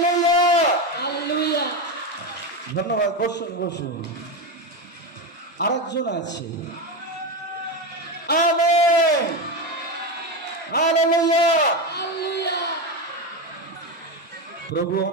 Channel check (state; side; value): normal; both; correlation 0.15